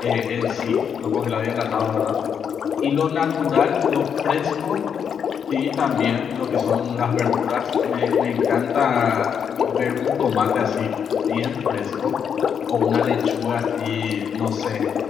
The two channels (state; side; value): quieter; right; 7.5 dB